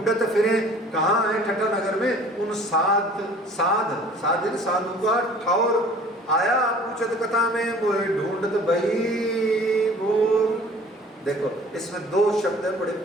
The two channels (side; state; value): both; normal; correlation 0.49